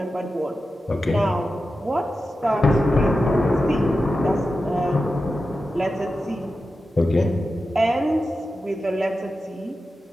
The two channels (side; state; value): both; normal; correlation 0.92